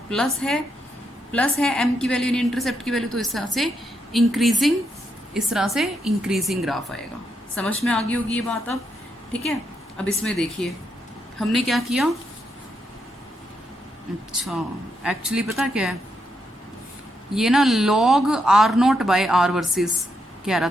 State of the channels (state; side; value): normal; both; correlation 0.80